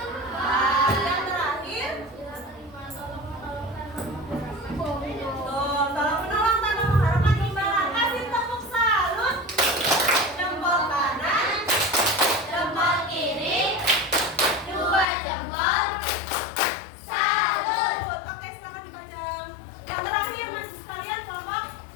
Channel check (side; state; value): right; drops out; at 15.1 s